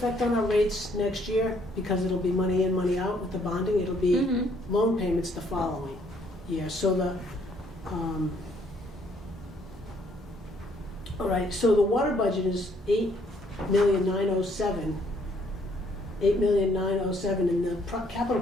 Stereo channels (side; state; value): both; normal; correlation 0.66